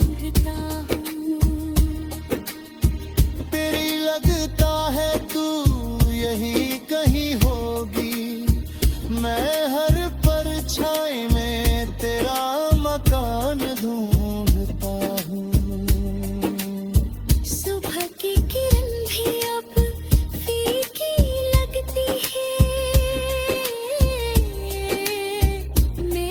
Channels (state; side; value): identical; both; correlation 1.00